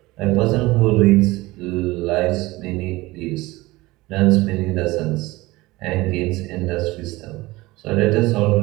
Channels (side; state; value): left; quieter; 20.3 dB